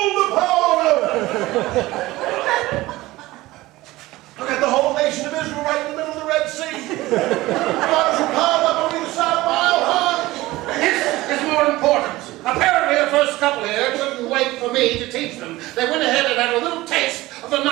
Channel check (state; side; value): quieter; left; 18.5 dB